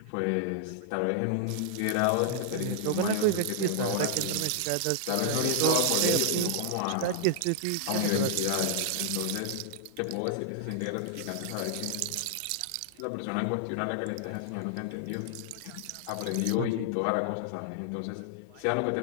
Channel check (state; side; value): different; both; correlation -0.01